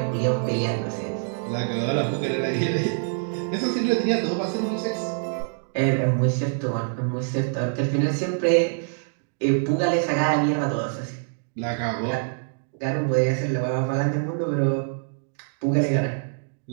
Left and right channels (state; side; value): silent; left; digital silence